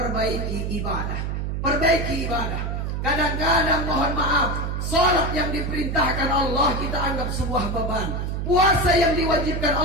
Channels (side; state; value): right; noise; hum, 2 dB below the sound